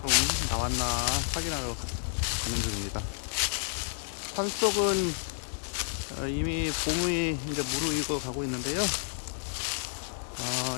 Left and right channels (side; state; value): right; silent; digital silence